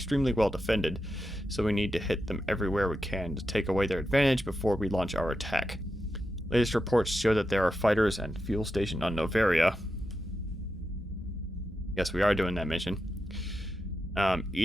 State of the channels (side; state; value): both; normal; correlation 0.88